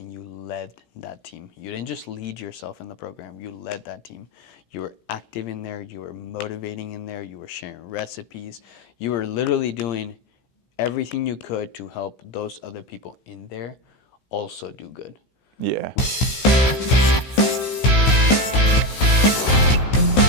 you led that team. You didn't just lead yourself in the program, you led that team. You were active in there, you were motivating in there, you were sharing recipes. You were literally doing everything you could to help those other people in there also do good. Yeah.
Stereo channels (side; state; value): right; late; 16 ms